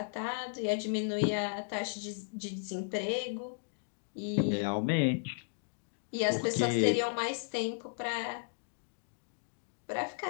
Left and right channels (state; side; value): silent; right; digital silence